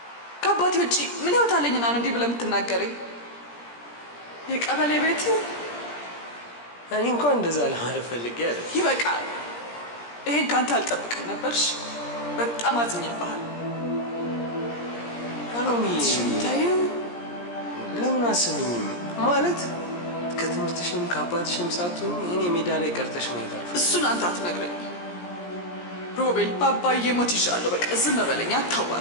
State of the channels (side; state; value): right; late; 17 ms